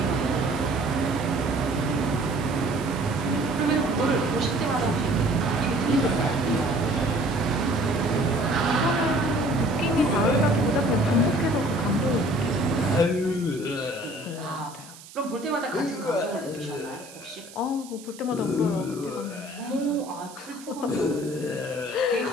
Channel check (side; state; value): right; noise; hiss, 19 dB below the sound